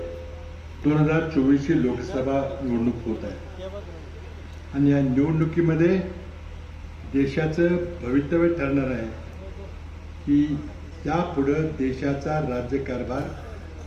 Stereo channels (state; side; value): identical; both; correlation 1.00